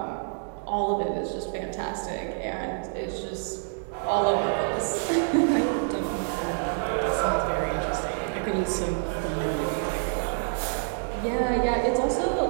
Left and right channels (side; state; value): left; silent; 60 dB below the other